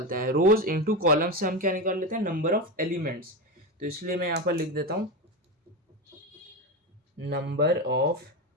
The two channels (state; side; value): normal; both; correlation 0.17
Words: हैं रोज इनटू कॉलम से हम क्या निकाल लेते हैं, नंबर ऑफ एलिमेंट्स। तो इसलिए मैं यहाँ पर लिख देता हूँ number of